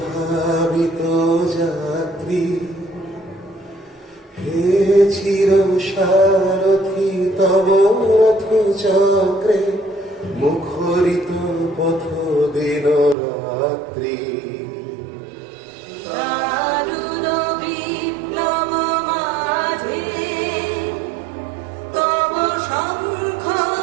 যাত্রী হে চির সারথি তব রথ চক্রে মুখরিত পথ দিন রাত্রি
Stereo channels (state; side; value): drops out; left; at 13.2 s